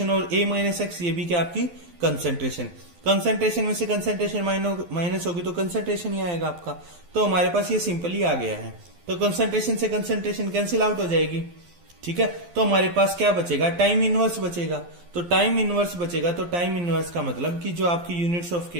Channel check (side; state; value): left; late; 12 ms